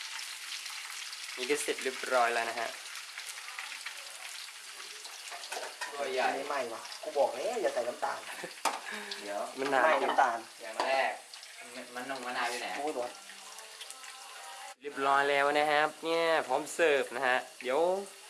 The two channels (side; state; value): both; identical; correlation 1.00